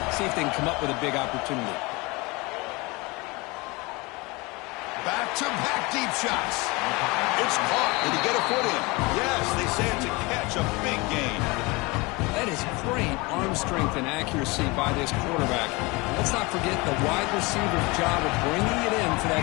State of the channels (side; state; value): right; quieter; 25.0 dB